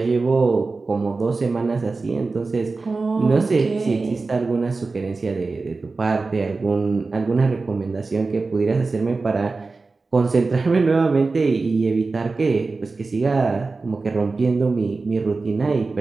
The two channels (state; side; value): quieter; left; 3.9 dB